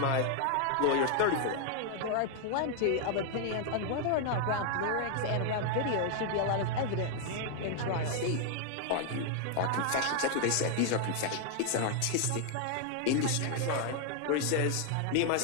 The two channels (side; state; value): both; different; correlation 0.00